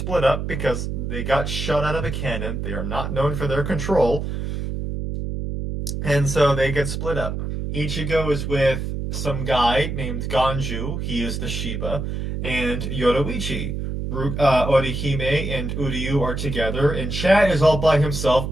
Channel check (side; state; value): right; noise; hum, 3 dB below the sound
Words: up because they got shot out of a cannon. They are not known for their control. And so they get split up. Ichigo is with some guy named Ganju. He is the Shiba. And Yoruichi. Orihime and Uryu are together, and Chad is all by himself,